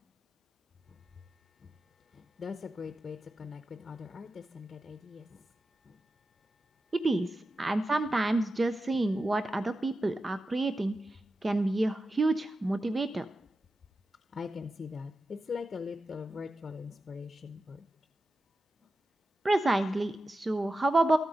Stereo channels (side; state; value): both; normal; correlation 0.91